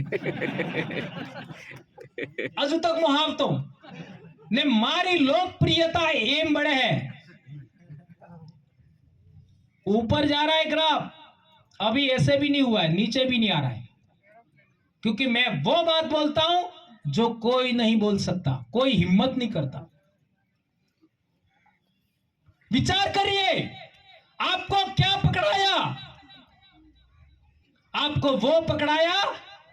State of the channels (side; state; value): both; identical; correlation 1.00